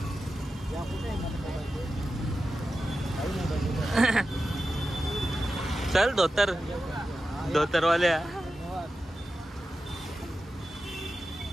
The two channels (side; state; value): both; normal; correlation 0.92